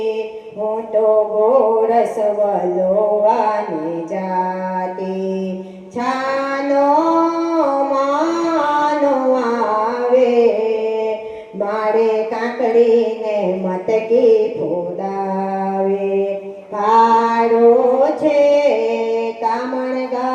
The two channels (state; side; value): identical; both; correlation 1.00